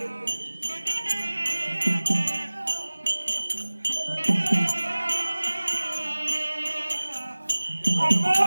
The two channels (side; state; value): both; inverted; correlation -1.00